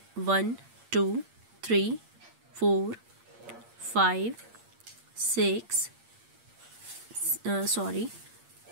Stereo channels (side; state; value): left; late; 8.7 ms